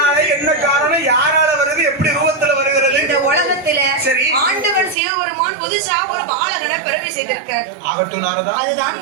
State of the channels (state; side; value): drops out; left; at 5.0 s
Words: என்ன காரணம், யாரால வருது, எப்படி ரூபத்துல வருகிறது? இந்த உலகத்துல சரி. ஆண்டவன் சிவபெருமான் புதுசா ஒரு பாலகனை பிறவி செய்திருக்கார். ஆகட்டும் நாரதா. அதுதான்